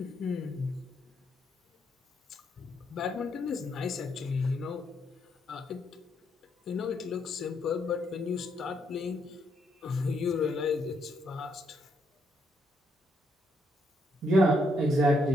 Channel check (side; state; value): both; normal; correlation 0.75